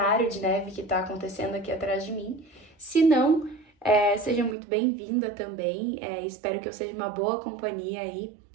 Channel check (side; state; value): left; drops out; at 4.5 s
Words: de neve que tá acontecendo aqui atrás de mim. Se não, seja muito bem-vinda também. Espero que eu seja uma boa companhia aí